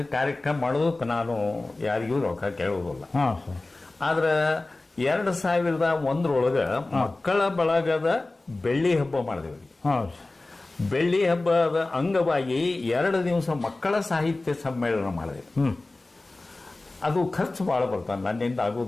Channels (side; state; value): right; quieter; 3.1 dB